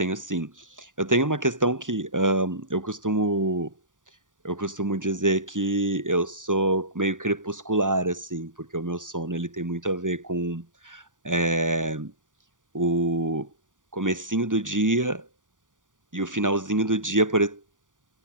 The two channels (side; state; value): left; late; 0.88 ms